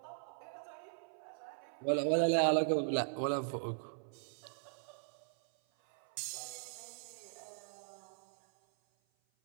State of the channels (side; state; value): left; silent; 52 dB below the other